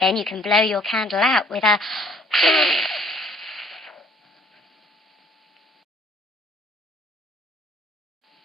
you can blow your candle out with a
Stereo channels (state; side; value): normal; both; correlation 0.59